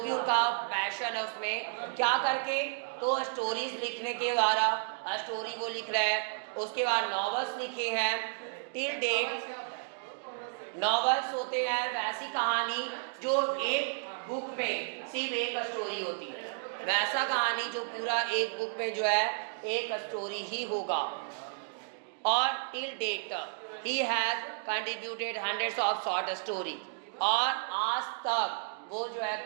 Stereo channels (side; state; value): left; silent; digital silence